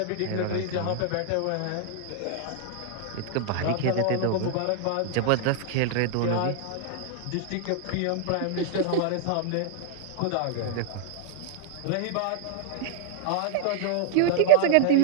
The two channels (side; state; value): both; different; correlation -0.01